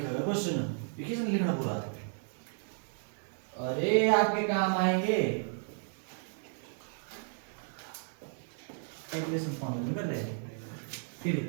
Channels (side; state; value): left; silent; 55 dB below the other